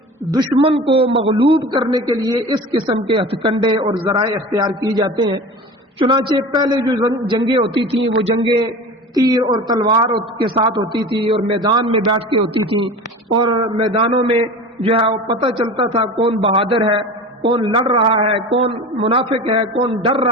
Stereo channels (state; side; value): normal; both; correlation 0.34